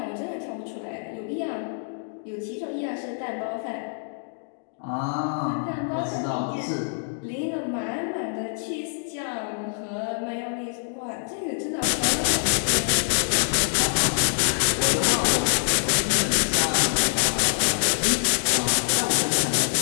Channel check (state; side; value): silent; right; digital silence